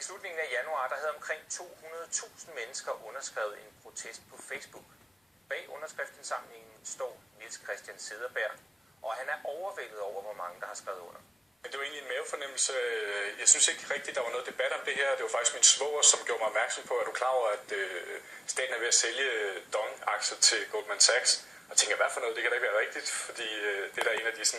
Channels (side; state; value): both; normal; correlation 0.96